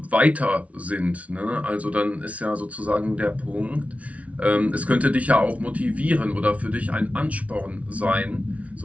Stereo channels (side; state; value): left; late; 0.066 ms